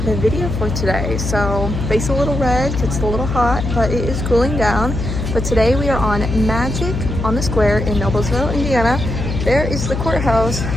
the video for today. So face a little red, it's a little hot, but it is cooling down. But today we are on Magic on the Square in Noblesville, Indiana. There is the courthouse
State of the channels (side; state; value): left; noise; hum, 3 dB below the sound